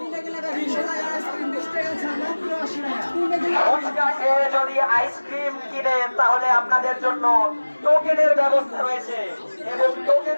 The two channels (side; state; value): both; inverted; correlation -1.00